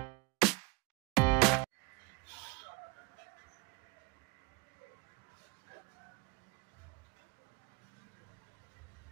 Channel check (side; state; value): left; quieter; 26.3 dB